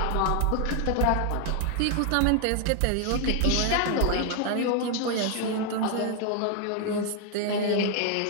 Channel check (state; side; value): different; both; correlation 0.00